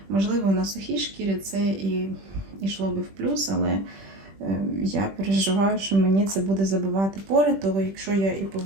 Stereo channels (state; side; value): late; left; 21 ms